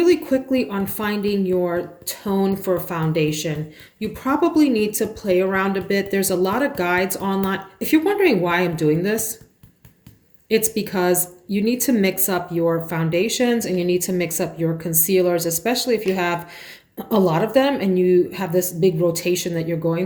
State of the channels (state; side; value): identical; both; correlation 1.00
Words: quickly on finding your tone for foundation, you probably need to play around a bit. There's a lot of guides online. If you're wondering why I'm doing this, it's because you need to mix up your foundations and you need to mix up your concealers, especially if you have a lot of them and you have this big rotation that you're